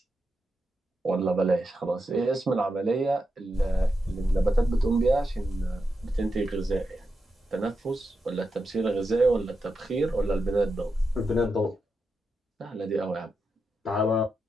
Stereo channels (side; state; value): both; normal; correlation 0.87